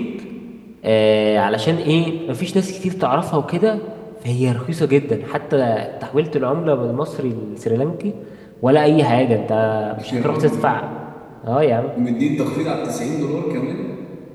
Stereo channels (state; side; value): identical; both; correlation 1.00